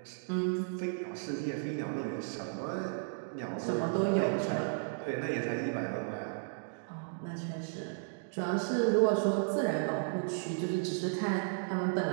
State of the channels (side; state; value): left; silent; digital silence